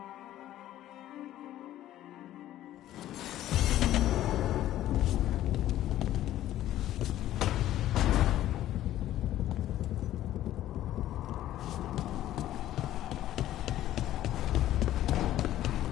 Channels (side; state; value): right; quieter; 13.3 dB